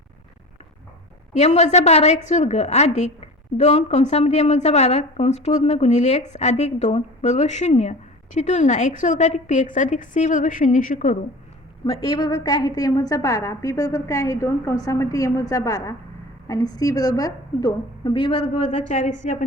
m वजा 12 x वर्ग अधिक 2 कंसामध्ये m वजा 12 कंस पूर्ण गुणिले x अधिक 2 बरोबर 0 ची तुलना x वर्ग अधिक px अधिक c बरोबर 0 शी करू. मग a बरोबर काय आहे तर m वजा 12, b बरोबर काय आहे 2 कंसामध्ये m वजा 12 आणि c बरोबर 2. b वर्ग वजा 4ac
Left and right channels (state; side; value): normal; both; correlation 0.36